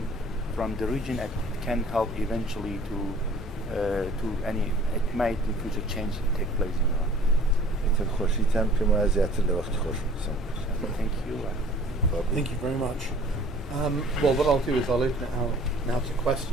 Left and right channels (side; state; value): both; normal; correlation 0.51